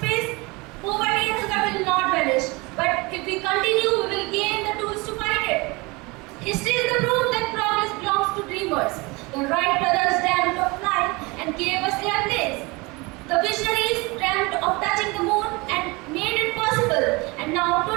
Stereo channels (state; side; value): quieter; left; 25.4 dB